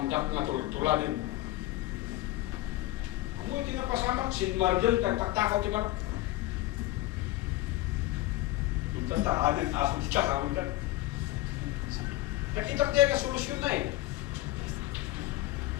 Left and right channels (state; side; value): quieter; right; 17.0 dB